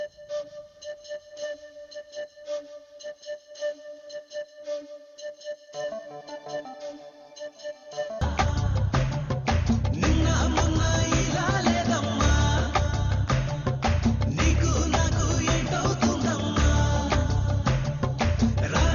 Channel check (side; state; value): both; identical; correlation 1.00